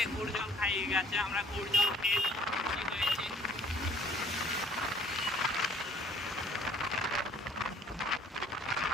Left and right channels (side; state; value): both; normal; correlation 0.58